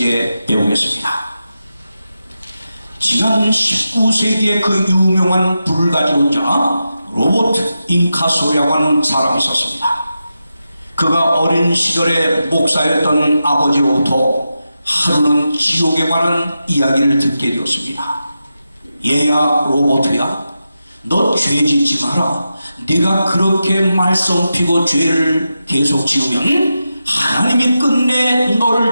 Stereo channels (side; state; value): both; inverted; correlation -0.90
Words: 배우겠습니다. 지난 19세기에 그 유명한 불가지론자 로버트 잉카소라고 하는 사람이 있었습니다. 그가 어린 시절에 목사였던 아버지로부터 하루는 지옥에 관한 이야기를 듣게 되었습니다. 얘야 로버트야, 너 죄 짓지 마라. 네가 그렇게 말썽 피고 죄를 계속 지으면 하나님이 끝내